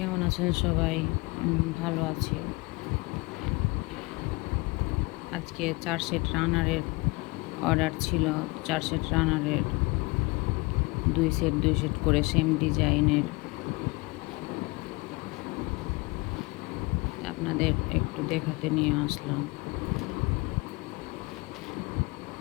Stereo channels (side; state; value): right; quieter; 25.9 dB